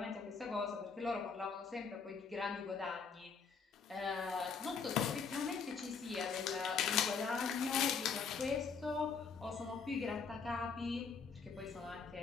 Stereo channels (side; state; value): right; quieter; 5.4 dB